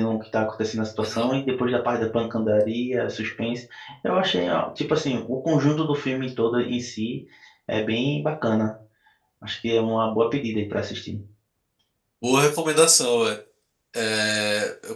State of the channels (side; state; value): both; identical; correlation 1.00